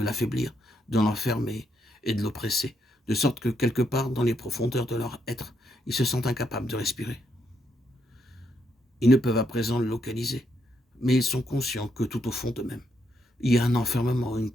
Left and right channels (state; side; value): normal; both; correlation 0.77